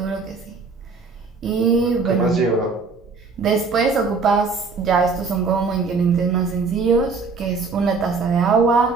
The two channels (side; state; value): left; quieter; 4.5 dB